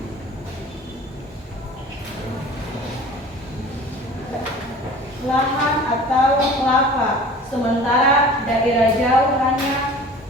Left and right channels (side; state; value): both; normal; correlation 0.43